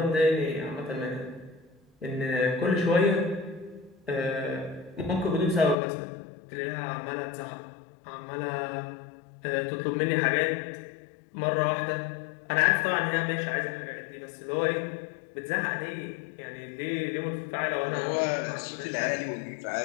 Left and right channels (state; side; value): drops out; right; at 5.8 s